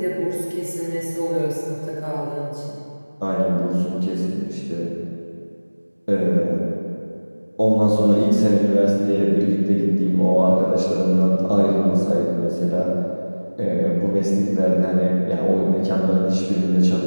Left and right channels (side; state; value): both; inverted; correlation -1.00